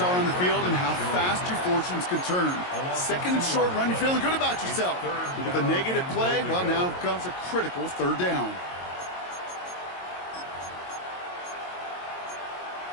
on the field and how fast your fortunes can turn. 2nd and short run, you're feeling good about yourself. But with a negative play, well, now comes a critical 3rd down.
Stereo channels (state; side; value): late; right; 22 ms